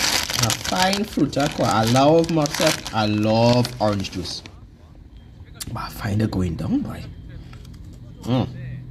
find fruta quality. I love myself. I love orange juice. But I find it going down, boy.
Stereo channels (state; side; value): identical; both; correlation 1.00